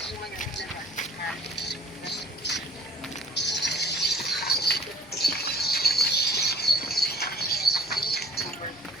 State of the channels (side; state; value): left; noise; hum, 25 dB below the sound